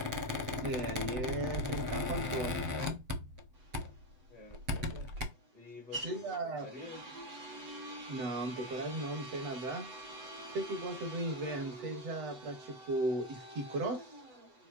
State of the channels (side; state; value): left; late; 7.9 ms